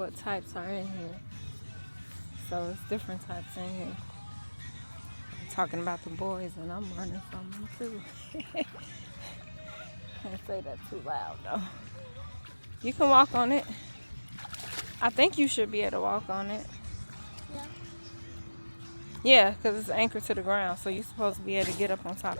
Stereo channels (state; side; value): inverted; both; correlation -1.00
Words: types are in here. So it's different types in here. Talking about the boys and I'm running from them too. Can't say that too loud though. You can walk on it. I think you should be able to walk on it. Yeah, because it's anchored to the ground, so you're supposed to be able to get up on